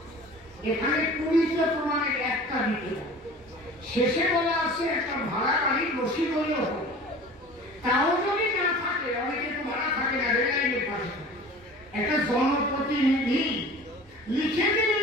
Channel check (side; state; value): both; normal; correlation 0.41